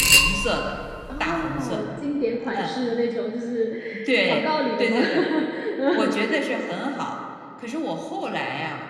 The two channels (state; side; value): identical; both; correlation 1.00